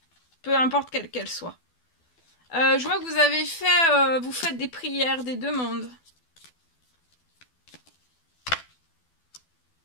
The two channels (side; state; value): right; late; 12 ms